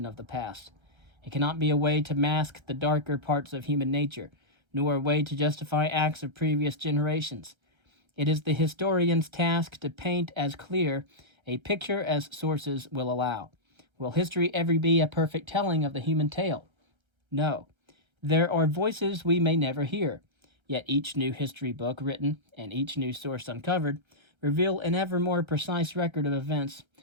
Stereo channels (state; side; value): late; left; 1.3 ms